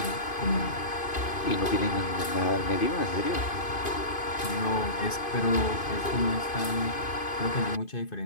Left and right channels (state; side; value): late; right; 2.5 ms